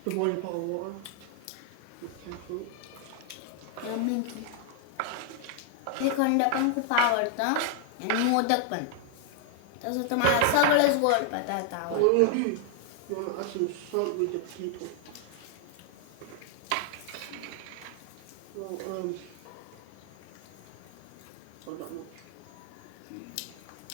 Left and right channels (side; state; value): both; different; correlation 0.00